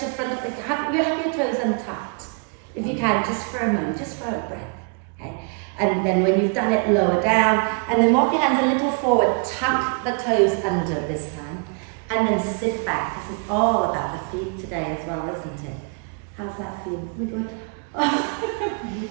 front of the, have your toes untucked. If you can, just for a moment, just for a breath. Okay? And then when you've done it, lower down, and then walk your hands a little forward, tuck the toes under this time, and then sit back. This is all about the feet today as well, isn't it? How's that feel? We good?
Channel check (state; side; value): quieter; left; 37.1 dB